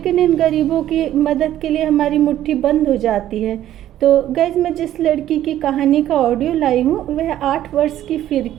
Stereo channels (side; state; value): left; quieter; 12.5 dB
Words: इन गरीबों की मदद के लिए हमारी मुट्ठी बंद हो जाती है। तो गाइज़ मैं जिस लड़की की कहानी का ऑडियो लाई हूँ वह 8 वर्ष की